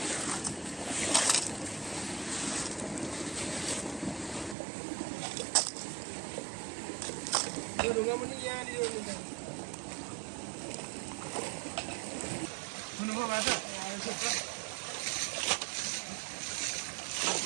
ढुङ्गा पनि यहाँनिर सुन्नुभयो बाटो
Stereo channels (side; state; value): left; drops out; at 4.5 s